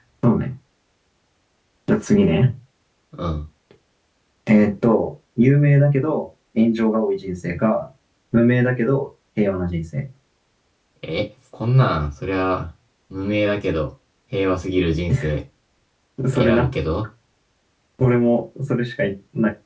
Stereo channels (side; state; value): both; identical; correlation 1.00